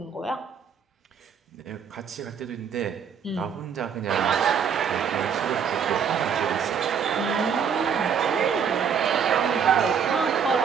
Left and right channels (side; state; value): left; quieter; 7.2 dB